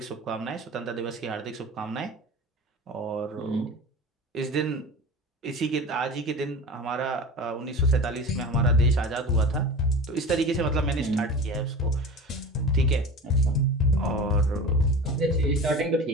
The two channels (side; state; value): both; normal; correlation 0.33